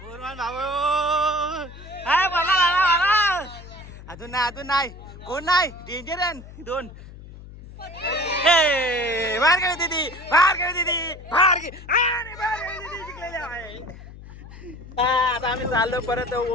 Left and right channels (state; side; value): noise; left; hum, 16 dB below the sound